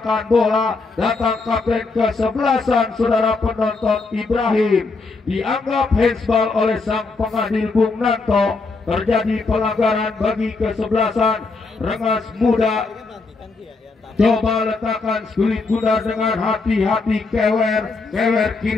bola. Datang kapten kesebelasan, saudara penonton, Ibrahim. Dianggap handsball oleh sang pengadil Bung Nanto. Terjadi pelanggaran bagi kesebelasan Rengas Muda. Coba letakkan kulit bundar dengan hati-hati. Kewer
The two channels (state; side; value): quieter; right; 3.9 dB